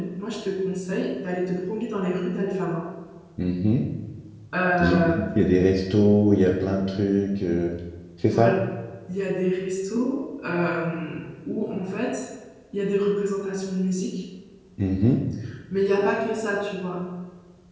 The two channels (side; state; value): both; identical; correlation 1.00